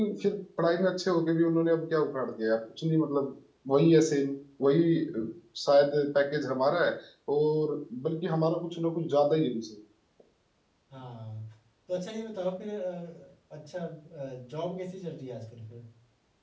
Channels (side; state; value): both; identical; correlation 1.00